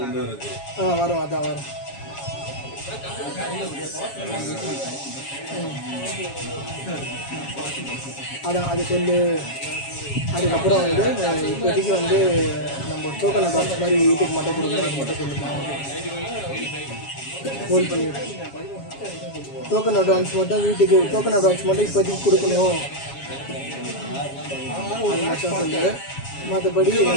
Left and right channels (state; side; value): late; right; 7.3 ms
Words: வரும் அதான் வரும். அதான் அது சொல்லு. அதுக்கப்புறம் வந்து இப்போதைக்கு வந்து நம்ம டோக்கன் அட்வான்ஸ் மாதிரி வீட்டுக்கு மட்டும் கொடுக்கணும் அது மட்டும் சொல்லுங்க. ஹோல்ட் பண்ணிவிடு. டோக்கன் அட்வான்ஸ் மட்டும் வீட்டுக்கு டோக்கன் அட்வான்ஸ் மட்டும் இப்போதைக்கு கொடுக்கணும். அது மட்டும் சொல்லு. மற்றபடி